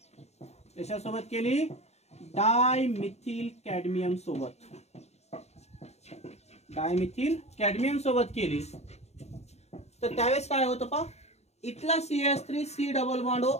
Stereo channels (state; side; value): late; right; 0.31 ms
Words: कशासोबत केली, डायमिथिल कॅडमियम सोबत, डायमिथिल कॅडमियम सोबत केली तर त्यावेळेस काय होतं पा, इथला CH3 डबल बॉन्ड O